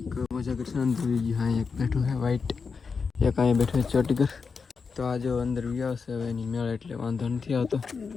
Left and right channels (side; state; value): right; quieter; 5.2 dB